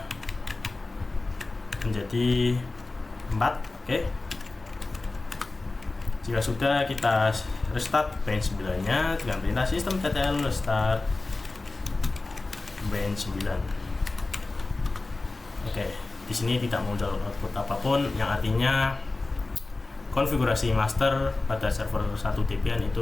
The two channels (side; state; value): right; quieter; 3.3 dB